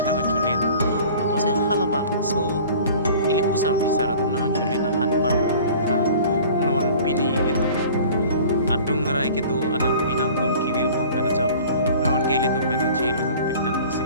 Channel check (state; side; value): inverted; both; correlation -0.45